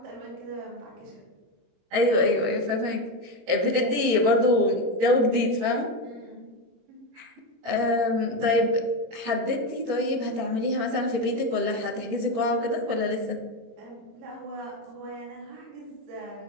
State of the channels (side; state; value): left; late; 22 ms